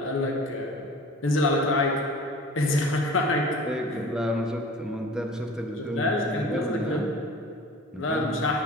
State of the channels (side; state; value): both; normal; correlation 0.42